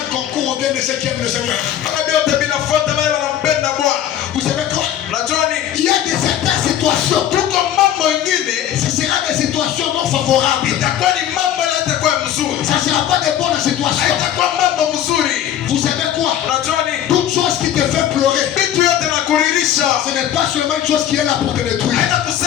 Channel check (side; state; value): right; quieter; 10.9 dB